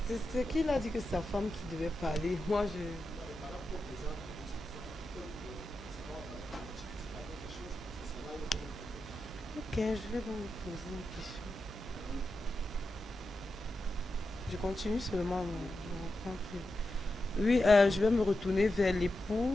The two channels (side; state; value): both; normal; correlation 0.89